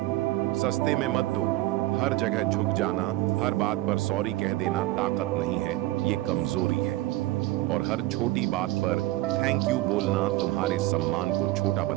सस्ते में मत दो। हर जगह झुक जाना, हर बात पर सॉरी कह देना ताकत नहीं है, ये कमजोरी है। और हर छोटी बात पर थैंक यू बोलना तुम्हारे सम्मान को छोटा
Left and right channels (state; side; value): quieter; left; 17.4 dB